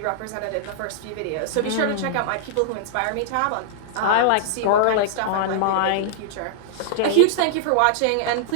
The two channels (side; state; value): both; different; correlation -0.01